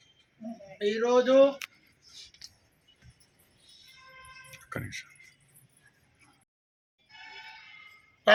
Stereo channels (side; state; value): both; identical; correlation 1.00